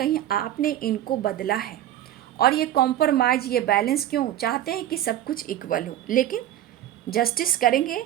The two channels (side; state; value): left; quieter; 12.3 dB